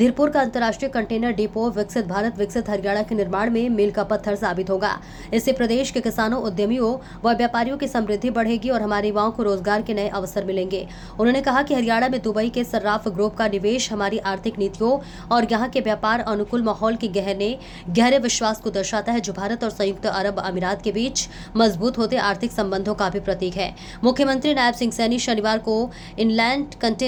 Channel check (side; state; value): both; identical; correlation 1.00